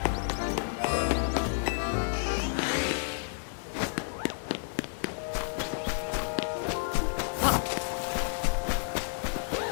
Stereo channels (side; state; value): right; silent; digital silence